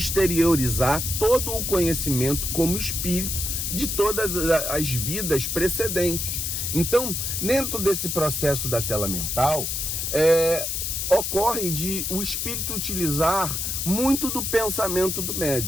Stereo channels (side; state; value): left; noise; hiss, 2 dB below the sound